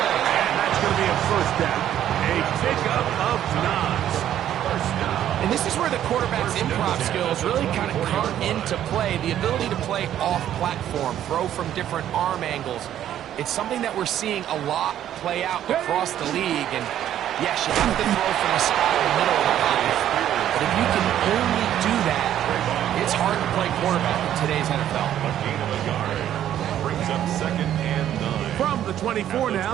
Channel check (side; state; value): left; quieter; 11.2 dB